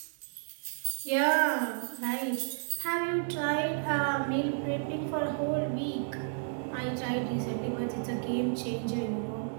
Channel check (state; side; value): silent; left; digital silence